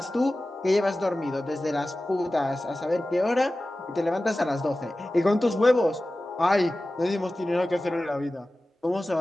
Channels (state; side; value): normal; both; correlation 0.96